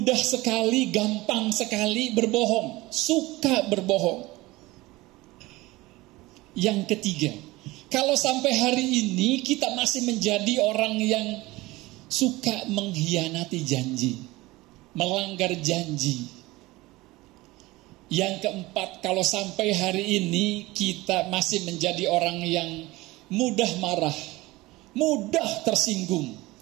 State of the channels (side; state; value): left; quieter; 20.2 dB